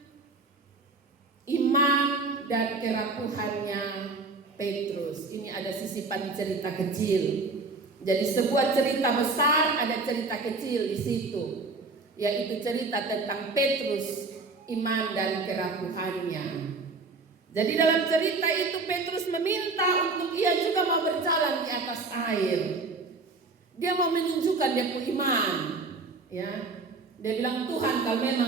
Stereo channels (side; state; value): left; quieter; 3.8 dB